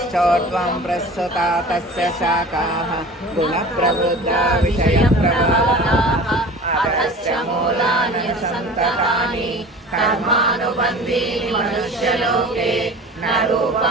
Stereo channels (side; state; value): both; normal; correlation 0.40